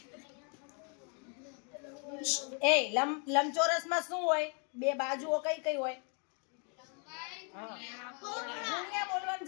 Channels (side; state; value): right; quieter; 38.6 dB